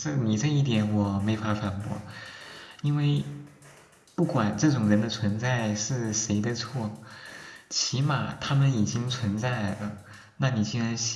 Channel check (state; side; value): identical; both; correlation 1.00